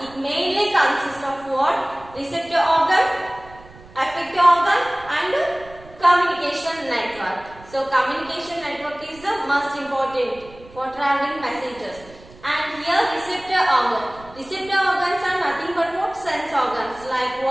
it mainly consists of what? Receptor organ, effector organ and communication network. So communication network is the most important for traveling messages. And here receptor organ. Receptor organs are nothing but what? Sense organs like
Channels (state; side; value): noise; right; rumble, 22 dB below the sound